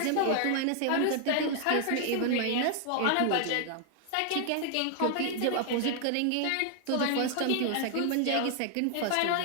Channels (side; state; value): both; different; correlation 0.00